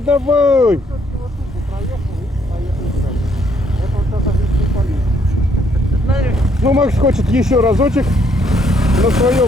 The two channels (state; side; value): normal; both; correlation 0.69